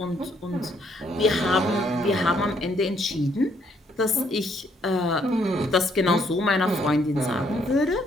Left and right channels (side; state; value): both; normal; correlation 0.69